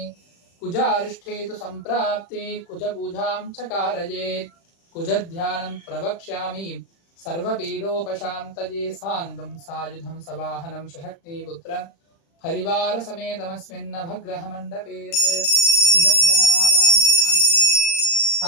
कुजारिष्ठेतु सम्प्राप्ते कुजपूजां च कारयेत् कुजध्यानं प्रवक्ष्यामि सर्वपीडोपशान्तये सांगं सायुधं सवाहनं शशक्नीपुत्र परिवार समेतमस्मिन् नवग्रह मंडपे कुजग्रहमावाहयामि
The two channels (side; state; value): right; late; 36 ms